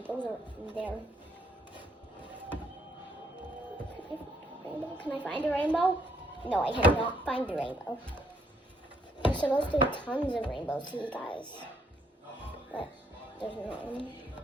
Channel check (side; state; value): both; normal; correlation 0.71